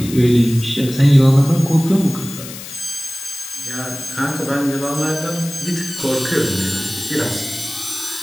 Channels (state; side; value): noise; left; hiss, 12 dB below the sound